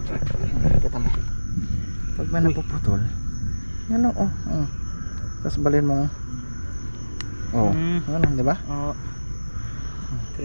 Kita mo. Pag may napuputol, yan oh. Tapos balin mo. Oh. Ano, di ba? Oo.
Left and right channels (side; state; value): both; inverted; correlation -1.00